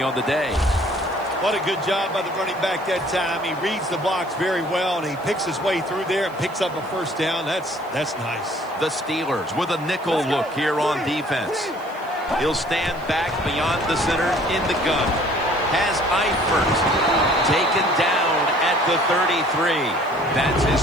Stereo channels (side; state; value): left; noise; hiss, 27 dB below the sound